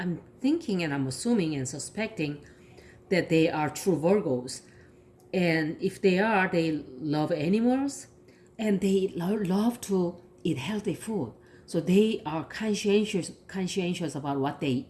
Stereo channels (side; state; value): both; identical; correlation 1.00